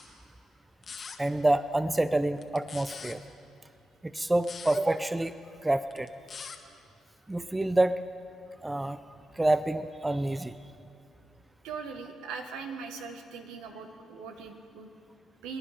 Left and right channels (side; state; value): both; normal; correlation 0.97